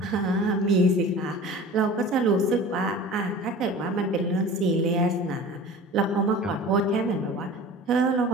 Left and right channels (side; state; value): both; normal; correlation 0.40